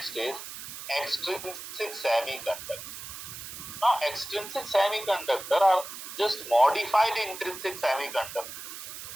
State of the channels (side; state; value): right; noise; hiss, 10 dB below the sound